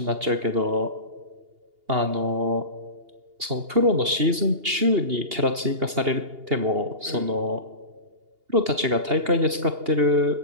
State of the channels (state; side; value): late; left; 2.8 ms